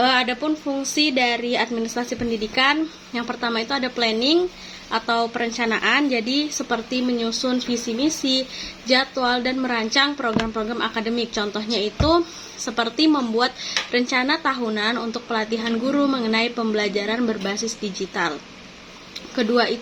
fungsi dari administrasi pendidikan, yang pertama itu ada planning atau perencanaan, jadi seperti menyusun visi misi, jadwal, dan merancang program-program akademik. Contohnya itu seperti membuat rencana tahunan untuk pelatihan guru mengenai pembelajaran berbasis digital. Kedua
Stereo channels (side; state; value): both; identical; correlation 1.00